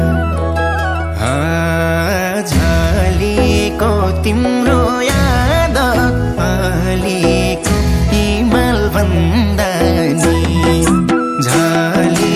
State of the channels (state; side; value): identical; both; correlation 1.00